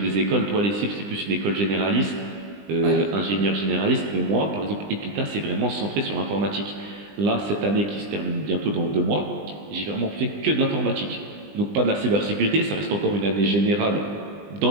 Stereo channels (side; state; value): left; late; 20 ms